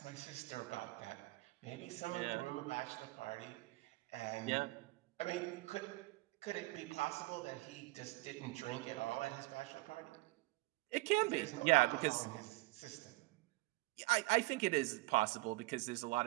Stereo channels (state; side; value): quieter; left; 21.8 dB